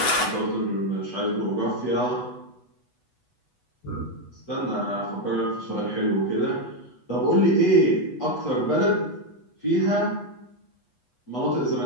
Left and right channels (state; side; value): late; right; 8.1 ms